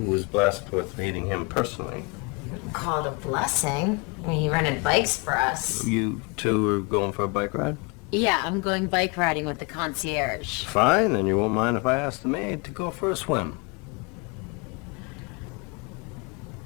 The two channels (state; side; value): quieter; right; 29.8 dB